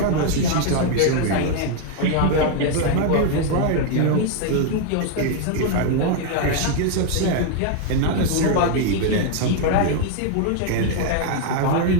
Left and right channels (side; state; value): both; different; correlation 0.00